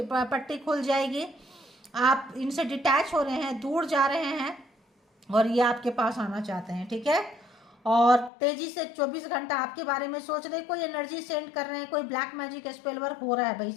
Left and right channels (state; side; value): drops out; right; at 8.3 s